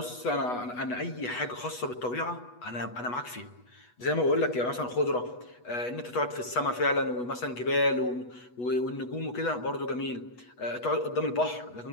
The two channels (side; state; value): right; late; 8.2 ms